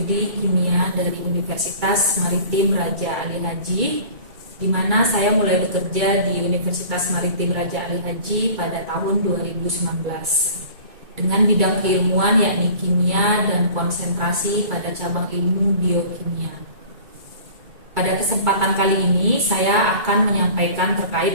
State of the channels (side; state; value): left; late; 2.3 ms